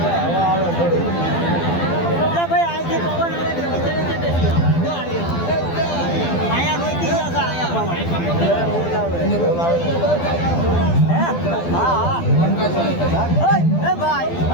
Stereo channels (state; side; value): late; right; 12 ms